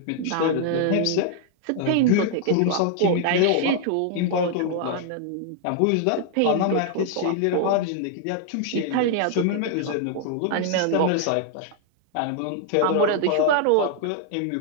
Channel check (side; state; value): both; different; correlation 0.00